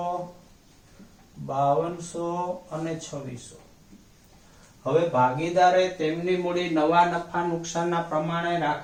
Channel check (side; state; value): both; identical; correlation 1.00